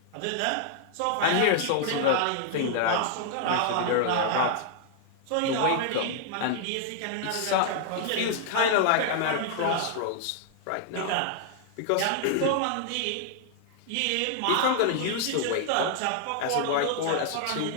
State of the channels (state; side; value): different; both; correlation 0.00